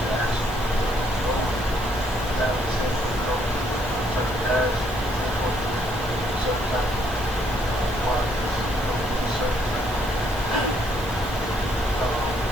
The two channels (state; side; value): normal; both; correlation 0.69